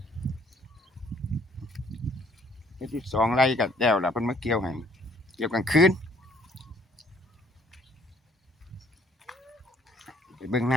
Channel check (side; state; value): both; normal; correlation 0.61